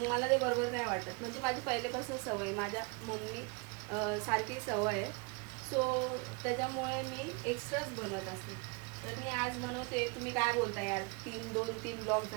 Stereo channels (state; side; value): quieter; left; 30.9 dB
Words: मला ते बरोबर नाही वाटत. म्हणजे माझी पहिल्यापासून सवय, माझ्या मम्मी सारखी सवय आहे. सो त्याच्यामुळे मी एक्स्ट्राच बनवत असते. तर मी आज बनवते. तुम्ही काय बोलता यार, 2-3 ब्लॉग